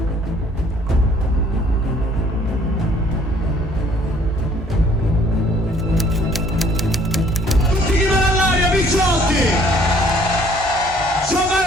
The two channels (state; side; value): normal; both; correlation 0.59